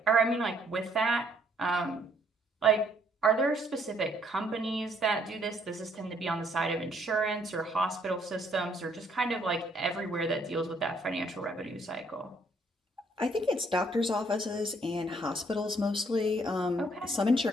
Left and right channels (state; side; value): normal; both; correlation 0.66